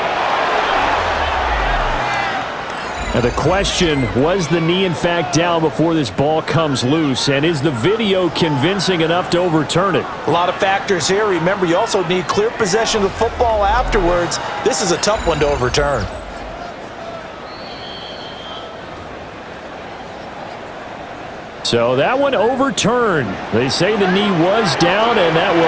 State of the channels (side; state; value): both; identical; correlation 1.00